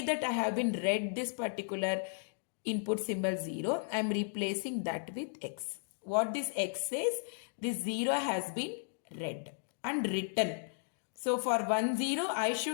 that I have been read this particular input symbol 0, I am replacing that with X. What this X says, this 0 has been read and written. So for 1 0, I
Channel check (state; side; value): silent; right; digital silence